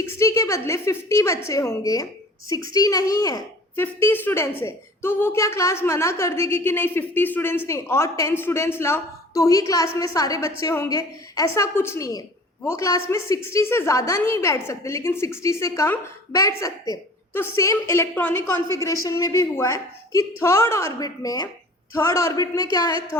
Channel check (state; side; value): normal; both; correlation 0.45